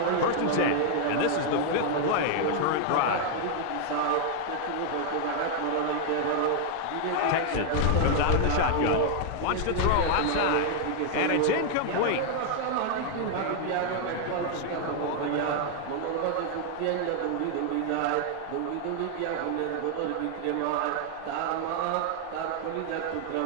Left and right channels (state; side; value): different; both; correlation 0.00